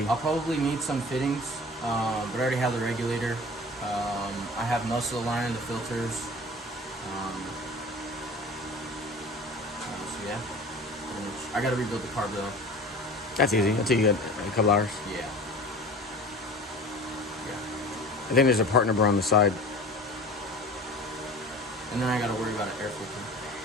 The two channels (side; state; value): both; normal; correlation 0.39